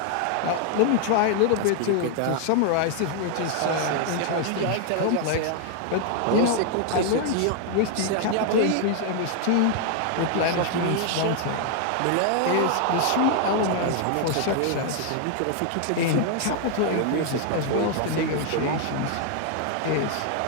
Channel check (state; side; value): different; both; correlation 0.00